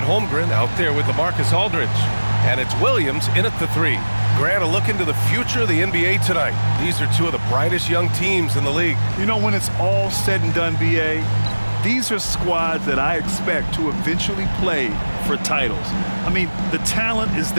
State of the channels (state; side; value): inverted; both; correlation -1.00